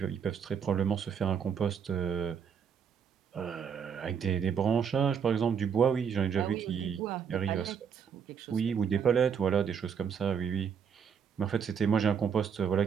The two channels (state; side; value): quieter; left; 7.2 dB